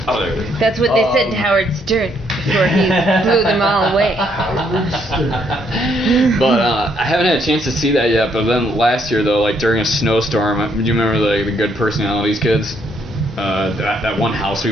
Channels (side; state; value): both; normal; correlation 0.71